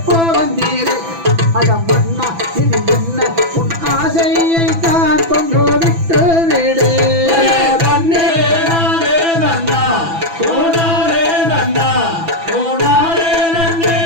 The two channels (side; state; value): left; late; 6.0 ms